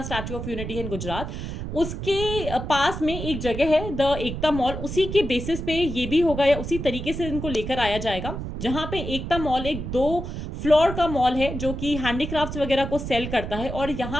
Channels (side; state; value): right; noise; rumble, 6 dB below the sound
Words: स्टैच्यू ऑफ यूनिटी है इन गुजरात, उसके पास में एक जगह है द एकता मॉल, उसी के बेसिस पे ये भी होगा या उसी तरीके से इनको लेकर आया जाएगा। जहां पे एकता मॉल एक 2 फ्लोर का मॉल है जो कि हैंडीक्राफ्ट्स वगैरह को सेल करता है, और